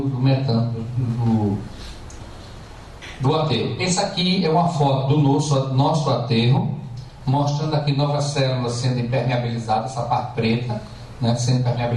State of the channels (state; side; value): identical; both; correlation 1.00